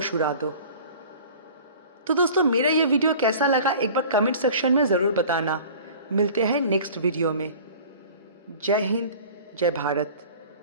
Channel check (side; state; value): both; inverted; correlation -0.44